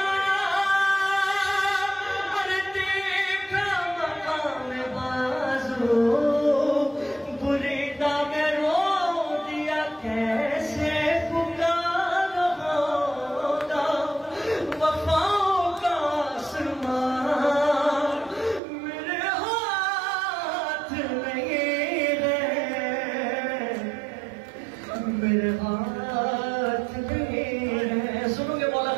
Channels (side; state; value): left; drops out; at 18.6 s